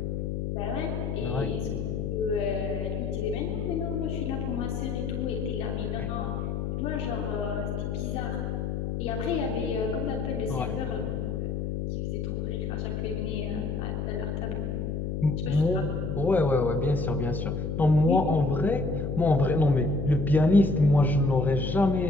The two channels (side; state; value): left; noise; hum, 2 dB below the sound